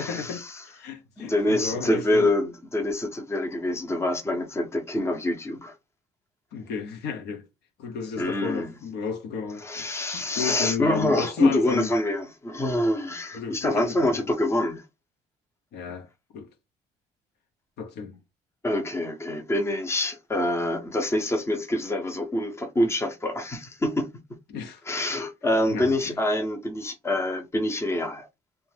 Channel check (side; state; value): both; normal; correlation 0.68